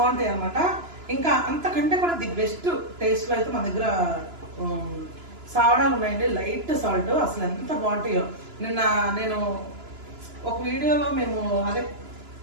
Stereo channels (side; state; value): left; late; 2.9 ms